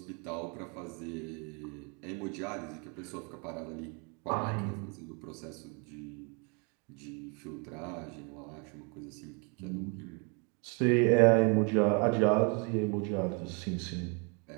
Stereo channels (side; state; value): left; quieter; 34.8 dB